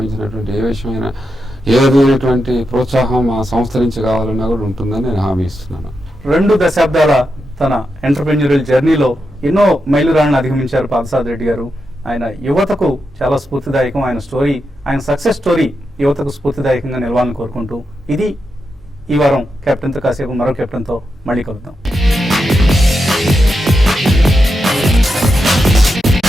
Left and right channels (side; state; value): both; normal; correlation 0.86